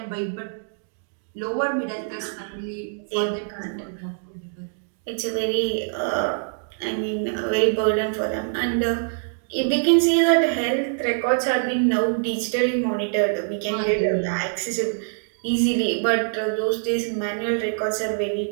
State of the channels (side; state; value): left; silent; digital silence